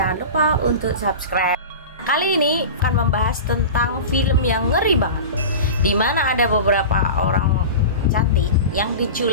lupa untuk subscribe. Kali ini akan membahas tentang film yang ngeri banget, dimana ada beberapa orang cantik yang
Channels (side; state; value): both; inverted; correlation -0.30